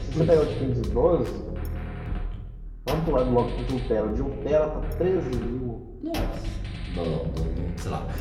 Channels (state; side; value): identical; both; correlation 1.00